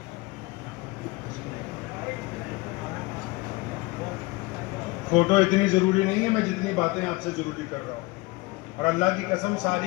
فوٹو اتنی ضروری نہیں ہے، میں جتنی باتیں آپ سے ضروری کر رہا ہوں، اور اللہ کی قسم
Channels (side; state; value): right; quieter; 22.7 dB